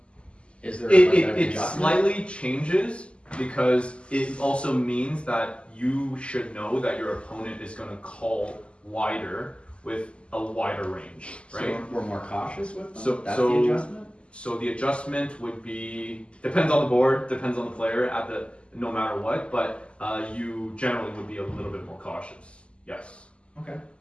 Is there it slightly changes because it also means that you should know that your opponent is going to call wider with a wider range, right? So we're more cautious with them? So That's the adjustment? So the adjustment would be, depends on the board, depends on the player no matter what, but you generally would be a little bit more cautious. Yes. Okay.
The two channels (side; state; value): right; late; 0.054 ms